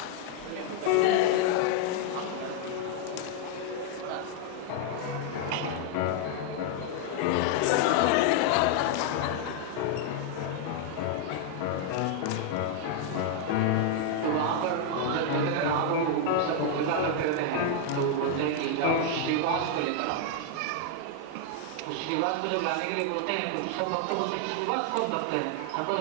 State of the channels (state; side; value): different; both; correlation 0.00